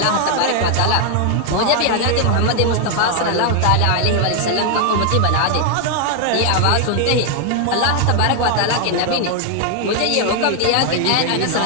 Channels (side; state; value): both; different; correlation 0.00